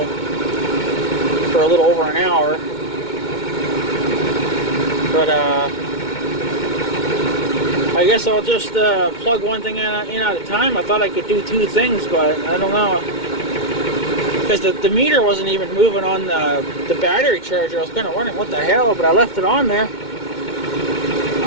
for a little over an hour. But I guess I'll just plug one thing in at a time. I thought I could do two things, but I don't know. Because the meter wasn't even moving on the battery charger. I was kind of wondering what the hell, but I left it on there.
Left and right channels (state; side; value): late; right; 2.2 ms